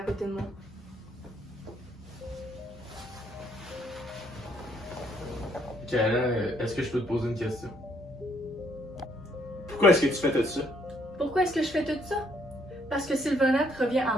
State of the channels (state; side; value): normal; both; correlation 0.68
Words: côté de moi. Kayla, est-ce que je peux te poser une question? Pourquoi est-ce que tu fais tout ça? Pourquoi est-ce que je fais tout ça? Parce que Sylvanette revient à